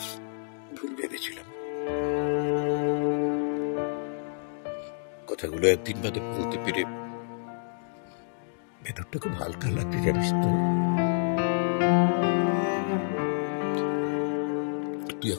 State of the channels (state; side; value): silent; right; digital silence